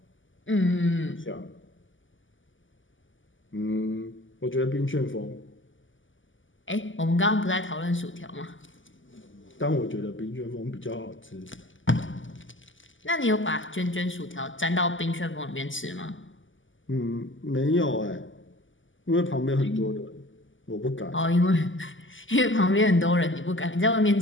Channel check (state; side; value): late; right; 0.57 ms